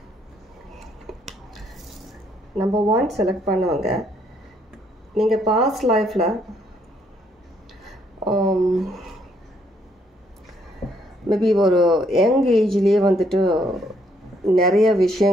நம்பர் 1 செலக்ட் பண்ணுவாங்க, நீங்கள் பாஸ்ட் லைஃப்பில் மேபி ஒரு யங் ஏஜ்லேயே வந்துட்டு நிறைய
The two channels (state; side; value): normal; both; correlation 0.70